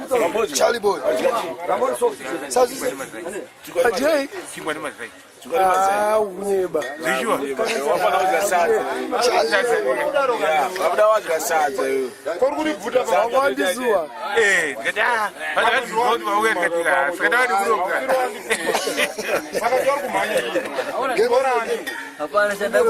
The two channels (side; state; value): both; identical; correlation 1.00